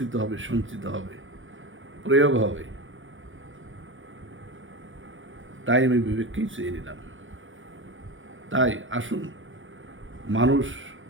হবে, সঞ্চিত হবে, প্রয়োগ হবে। তাই আমি বিবেককেই চেয়ে নিলাম। তাই আসুন, মানুষ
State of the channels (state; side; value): late; left; 0.57 ms